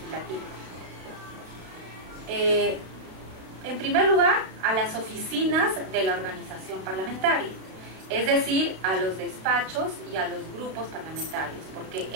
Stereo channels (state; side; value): late; left; 32 ms